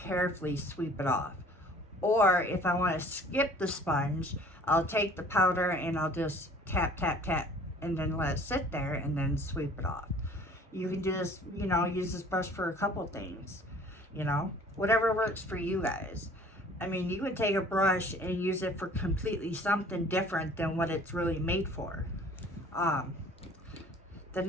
sweep it off. Or if I want to skip the sponge, I'll take the powder and I'll just tap, tap, tap, and then let it sit there and then sweep it off. You can do this, use this brush for a couple things, whatever works for you guys. I mean, you could take a brush and use it for completely something different than what it's really made for. The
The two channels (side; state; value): both; normal; correlation 0.51